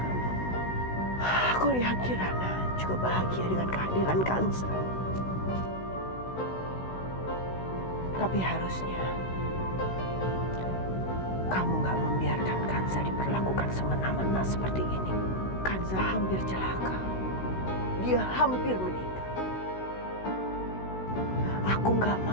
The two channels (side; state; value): right; late; 16 ms